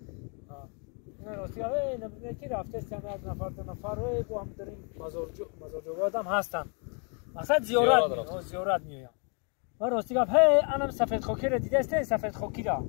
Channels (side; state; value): right; quieter; 37.7 dB